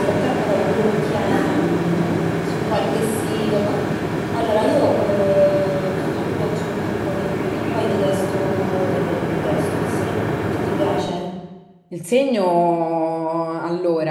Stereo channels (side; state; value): both; identical; correlation 1.00